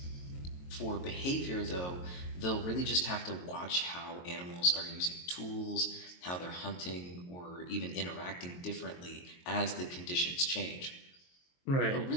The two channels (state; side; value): late; right; 22 ms